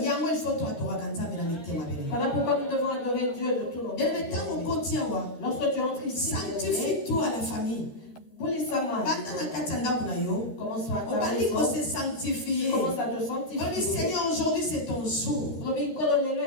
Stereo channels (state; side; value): late; right; 13 ms